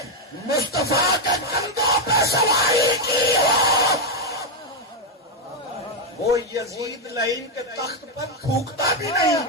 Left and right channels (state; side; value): normal; both; correlation 0.02